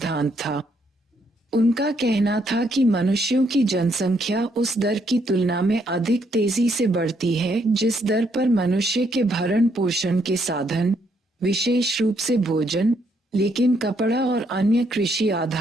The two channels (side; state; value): both; normal; correlation 0.73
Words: था। उनका कहना था कि मनुष्यों की जनसंख्या उस दर की तुलना में अधिक तेजी से बढ़ती है जिस दर पर मनुष्य के भरण पोषण के साधन, विशेष रूप से भोजन, लेकिन कपड़ा और अन्य कृषि